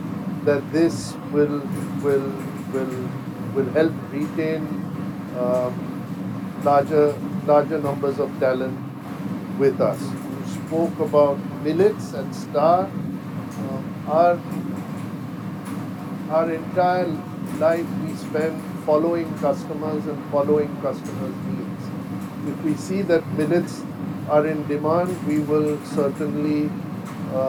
that this will help retain larger numbers of talent with us. You spoke about millets and Star. Our entire life we spend following customers and following customers' needs. If we see that millets are in demand, we will certainly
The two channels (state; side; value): identical; both; correlation 1.00